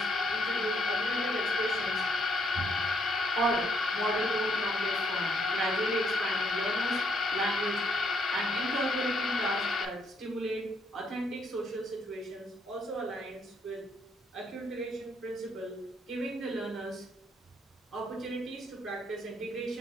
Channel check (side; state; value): both; normal; correlation 0.72